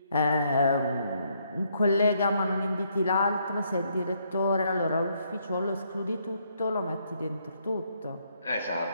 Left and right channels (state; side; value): inverted; both; correlation -0.72